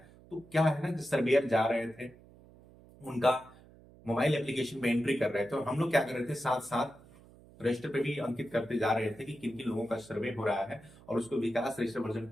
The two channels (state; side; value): noise; right; hum, 23 dB below the sound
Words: तो क्या है ना, सर्वेयर जा रहे थे, उनका मोबाइल एप्लीकेशन पे एंट्री कर रहे थे और हम लोग क्या कर रहे थे, साथ साथ रजिस्टर पे भी अंकित करते जा रहे थे कि किन किन लोगों का सर्वे हो रहा है, और उसको विकास रजिस्टर वर्जन